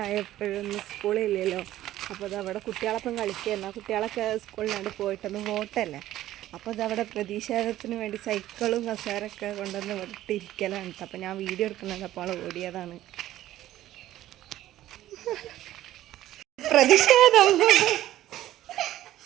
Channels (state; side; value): quieter; left; 13.9 dB